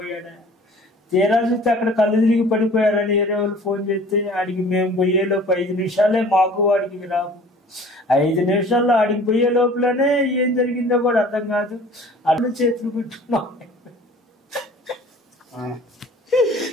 తీరా చూస్తే అక్కడ కళ్ళు తిరిగి పడిపోయారని వేరే వాళ్ళు ఫోన్ చేస్తే ఆడికి మేము పోయేలోపు 5 నిమిషాలే మాకు వాడికి రావు. 5 నిమిషాల్లో ఆడికి పోయే లోపలనే ఏం జరిగిందో కూడా అర్థం కాదు. అడ్డు చేతులు పెట్టుకున్నాం.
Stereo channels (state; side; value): normal; both; correlation 0.48